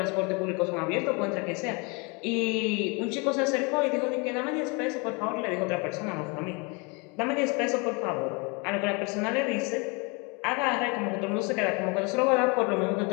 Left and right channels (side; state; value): right; quieter; 30.4 dB